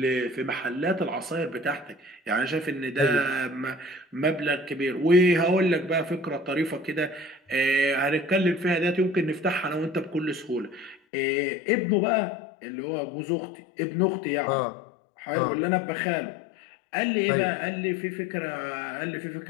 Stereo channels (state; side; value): drops out; right; at 11.0 s